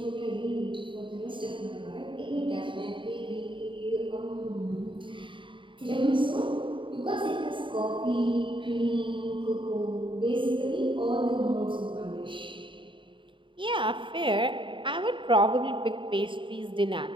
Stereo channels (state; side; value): late; left; 0.24 ms